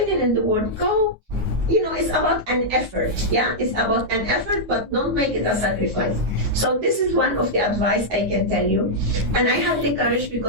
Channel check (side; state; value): left; late; 9.6 ms